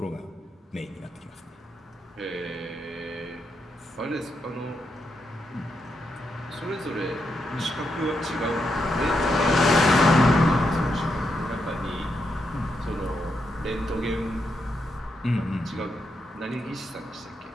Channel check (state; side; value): normal; both; correlation 0.82